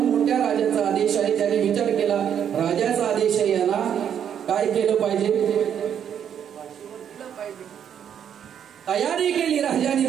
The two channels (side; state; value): left; quieter; 8.8 dB